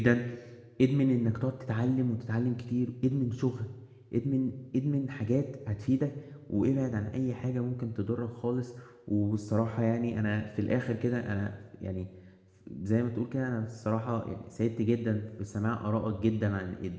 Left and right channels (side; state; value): both; identical; correlation 1.00